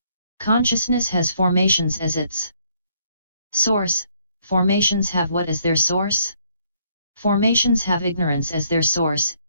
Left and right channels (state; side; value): inverted; both; correlation -0.67